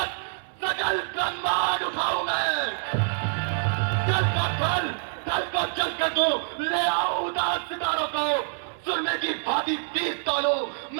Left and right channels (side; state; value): left; silent; 61 dB below the other